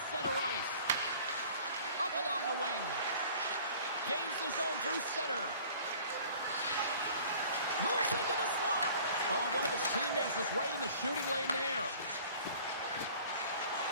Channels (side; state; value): both; inverted; correlation -0.49